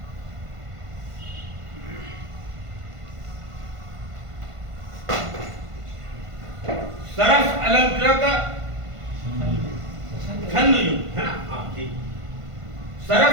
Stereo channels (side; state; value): left; late; 1.5 ms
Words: सरस अलंकृत छंद युक्त है ना, हाँ ठीक।